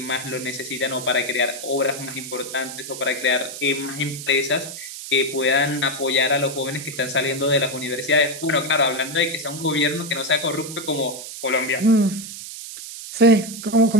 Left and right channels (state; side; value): noise; right; hiss, 10 dB below the sound